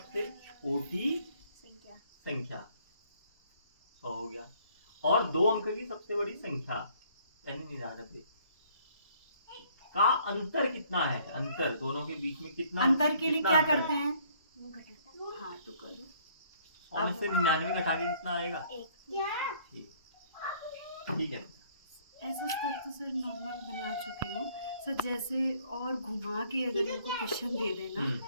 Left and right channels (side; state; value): both; inverted; correlation -0.61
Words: छोटी संख्या 100 हो गया, और 2 अंक की सबसे बड़ी संख्या यानी 99 का अंतर कितना है? अंतर दोनों के बीच में कितना? अंतर के लिए कितना क्या अंतर करते है? हैं? हाँ तो करो। 100 में से 99 घटा के कितना आएगा? 1। ठीक है। ऐसा स्तर तो सर नॉर्मल बना चुके हो सर, जैसे और घुमा के अगर इनको क्वेश्चन दे देना